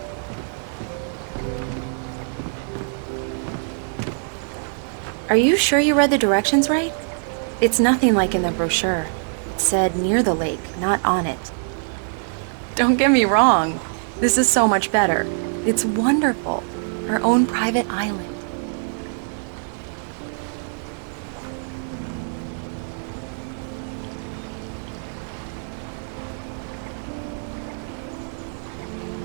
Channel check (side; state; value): left; silent; 63 dB below the other